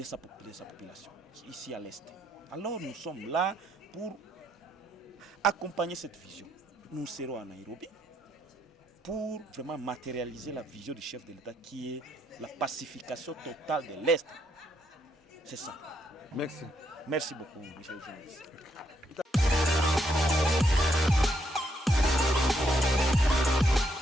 sa population, ici à l'Est. Alors nous sommes là pour accompagner cette vision. Nous serons à Nairobi pour vraiment matérialiser la vision du chef de l'État qui est la pacification totale de l'Est. C'est ça. Merci. Merci beaucoup, monsieur le journaliste.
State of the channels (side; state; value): both; normal; correlation 0.75